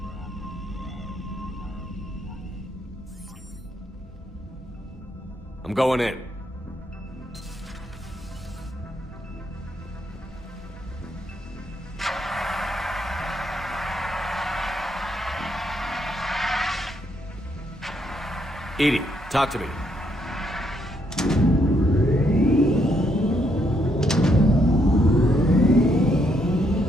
I'm going in. Edie, talk to me.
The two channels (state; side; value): normal; both; correlation 0.74